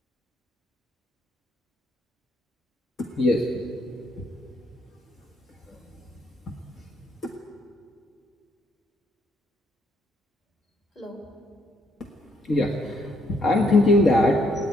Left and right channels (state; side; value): normal; both; correlation 0.72